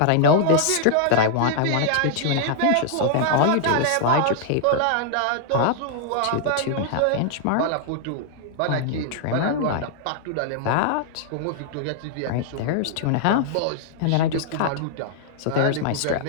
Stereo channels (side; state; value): both; different; correlation -0.01